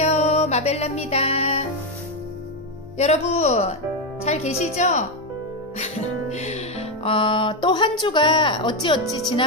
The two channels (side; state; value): both; normal; correlation 0.07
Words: 마벨라입니다. 여러분 잘 계시죠? 또 한 주가 어찌어찌